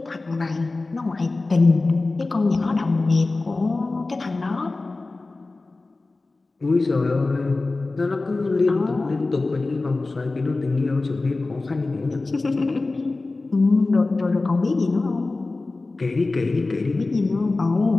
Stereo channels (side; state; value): right; quieter; 3.4 dB